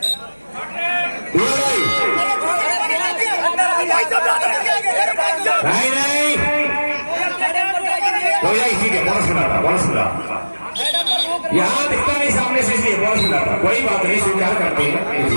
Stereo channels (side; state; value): both; inverted; correlation -1.00